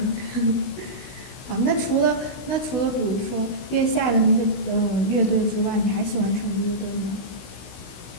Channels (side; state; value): right; late; 16 ms